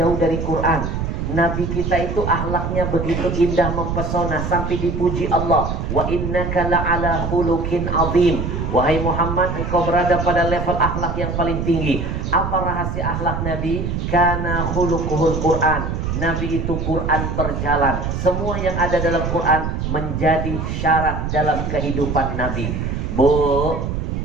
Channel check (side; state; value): right; noise; rumble, 3 dB below the sound